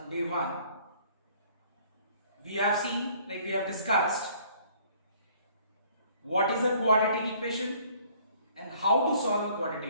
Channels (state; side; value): inverted; both; correlation -0.58